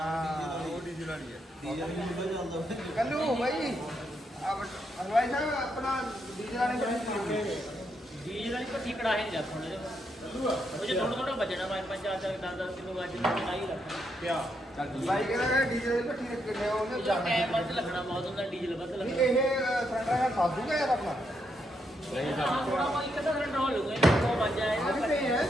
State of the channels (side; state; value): both; normal; correlation 0.79